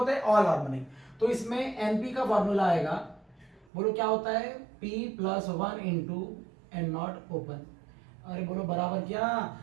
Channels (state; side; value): drops out; left; at 3.7 s